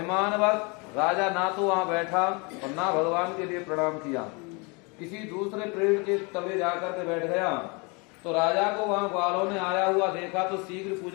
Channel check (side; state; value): right; quieter; 30.4 dB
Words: राजा ना तो वहां बैठा और ना भगवान के लिए प्रणाम किया, किसी दूसरे पेड़ के तले जाकर के बैठ गया। तो राजा को वहां ग्वालों ने आया हुआ देखा तो शीघ्र